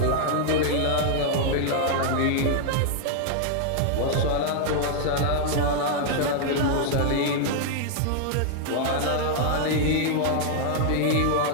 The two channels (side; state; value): both; different; correlation -0.01